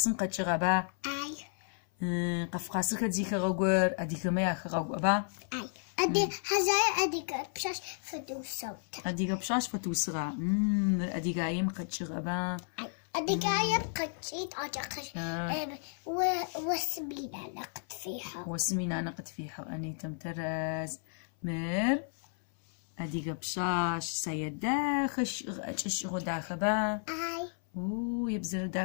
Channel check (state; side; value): silent; right; 56 dB below the other